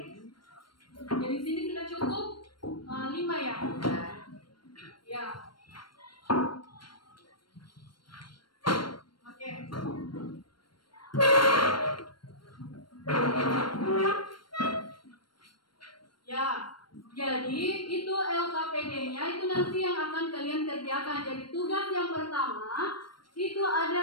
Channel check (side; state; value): right; late; 0.72 ms